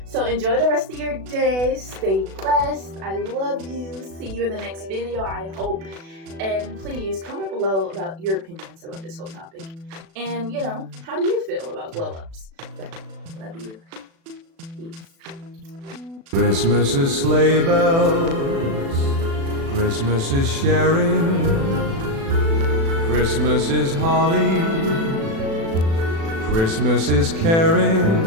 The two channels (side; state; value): left; late; 36 ms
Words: So enjoy the rest of your day. Stay blessed. I love you. See you in the next video, I hope. And please comment below about your opinions about this whole topic. And, you know, how do you feel about glow ups? Love you. Peace. Christmas is sleigh bells. Christmas is sharing. Christmas is holly. Christmas is